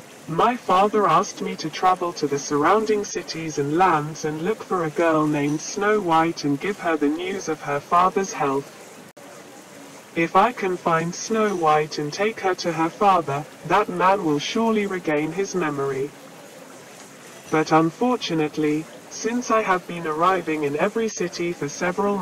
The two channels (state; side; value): identical; both; correlation 1.00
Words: my father asked me to travel to the surrounding cities and lands and look for a girl named Snow White and give her the news of her father's health. If I can find Snow White and take her to her father, that man will surely regain his memory. But unfortunately, since I have been arriving in every city for several